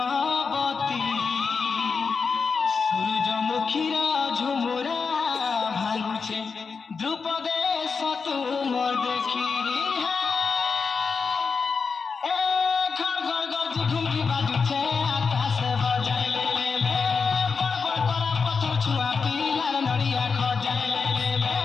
सूरजमुखीर झुमुरा भांगुछे ध्रुपदे तुम देखी घर घर गर्जी घुमरी बाजुछे आकाश बजाइले ले बड़ बड़ करा पत्थर छुआ पिलार नड़िया खजाइले ले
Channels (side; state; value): right; quieter; 5.2 dB